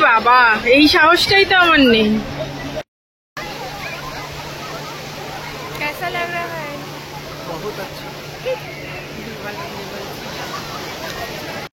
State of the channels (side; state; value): both; identical; correlation 1.00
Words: বাবা, এই সাহসটাই তো আমার নেই। कैसा लग रहा है? बहुत अच्छा।